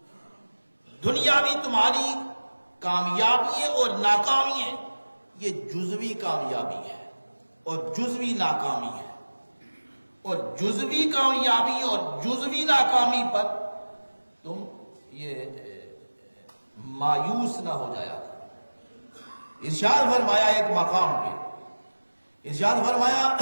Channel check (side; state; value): both; inverted; correlation -1.00